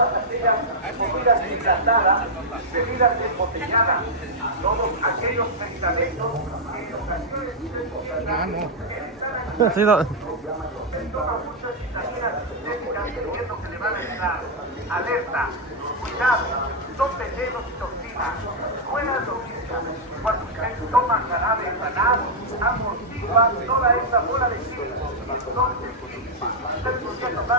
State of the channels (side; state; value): both; normal; correlation -0.04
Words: aquellas comidas enlatadas, bebidas embotelladas, todos aquellos medicamentos que en ocasiones Sí, no. toma muchas vitaminas sintéticas creyendo que le van a ayudar. Alerta, cuidado, son venenos y toxinas. Buenas noticias, cuando usted toma jarabe sanado, amortigua toda esa bola de chile. Entonces, usted podría